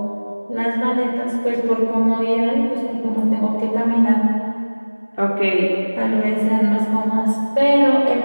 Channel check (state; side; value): inverted; both; correlation -1.00